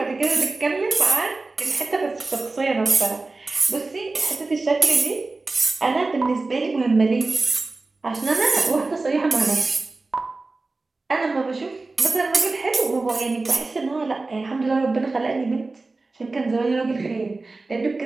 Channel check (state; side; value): quieter; left; 3.5 dB